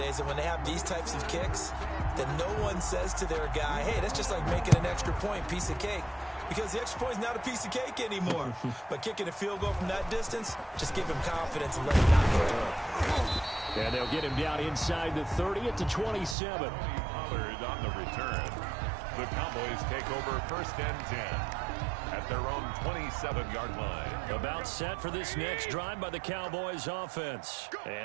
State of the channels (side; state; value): left; drops out; at 16.4 s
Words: that when they have these types of kicks, that no one says to their guy, hey, that's just like making an extra point, piece of cake. Because the extra point is not a piece of cake anymore. But kicking a field goal from that distance, just give him confidence and let him knock it down. And they'll get him down inside the 30 at the 27. Pollard on the return. The Cowboys take over 1st and 10 at their own 27-yard line. About set for this next drive by the Cowboys offense.